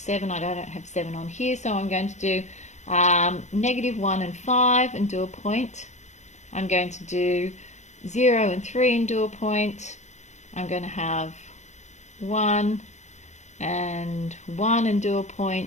I don't have 7 on here, so I'm going to do -1 and 5 and do a point. I'm going to do 0 and 3 and do a point. I'm going to have 1 and 1 and do a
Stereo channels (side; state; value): right; late; 0.34 ms